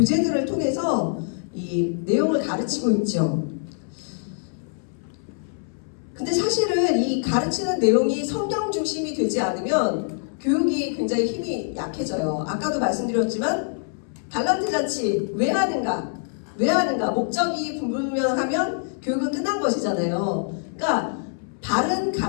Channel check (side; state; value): right; silent; 62 dB below the other